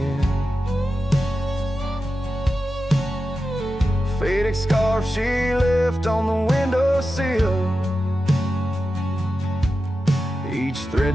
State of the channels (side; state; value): both; normal; correlation 0.92